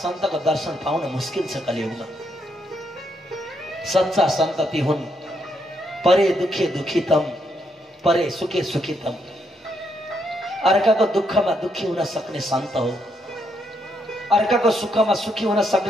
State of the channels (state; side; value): normal; both; correlation 0.76